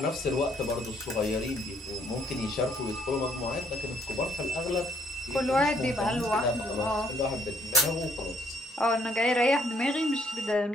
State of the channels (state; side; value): normal; both; correlation 0.67